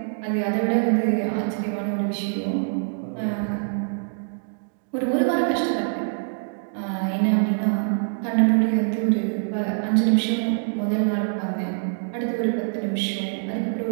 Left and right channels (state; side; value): silent; left; digital silence